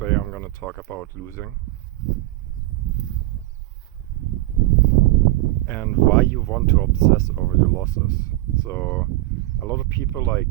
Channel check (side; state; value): left; quieter; 18.1 dB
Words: Today I'm gonna talk about losing and why you want to obsess over your losses. So a lot of people